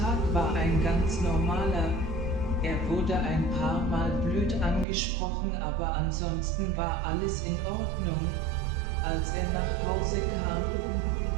war ein ganz normaler. Er wurde ein paar Mal blöd angesprochen, aber ansonsten war alles in Ordnung. Als er nach Hause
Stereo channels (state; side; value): drops out; left; at 4.9 s